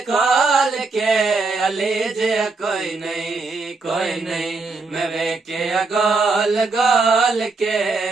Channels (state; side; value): quieter; left; 3.9 dB